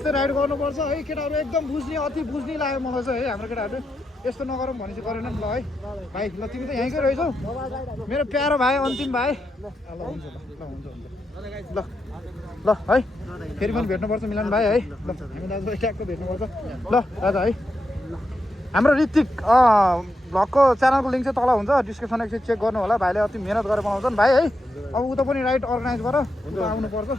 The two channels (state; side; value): normal; both; correlation 0.84